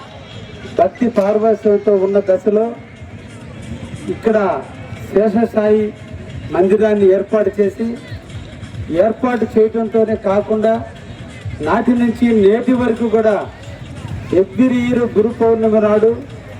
భక్తి పారవశ్యంతో ఉన్న దశలో ఇక్కడ శేషసాయి మందిరాన్ని ఏర్పాటు చేయడంతోనే కాకుండా నాటి నుంచి నేటి వరకు కూడా ఎవ్రీ ఇయర్ గురు పౌర్ణమి నాడు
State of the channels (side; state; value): both; identical; correlation 1.00